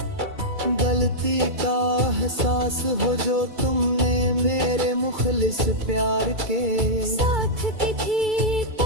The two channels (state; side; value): late; left; 2.3 ms